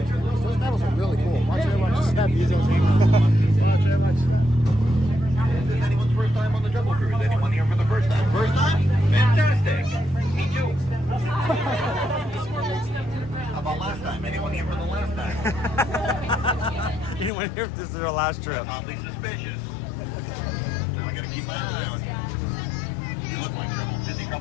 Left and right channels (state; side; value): drops out; right; at 17.3 s